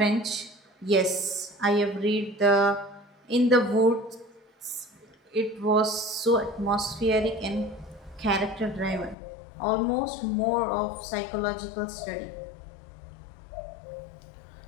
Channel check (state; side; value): drops out; right; at 9.2 s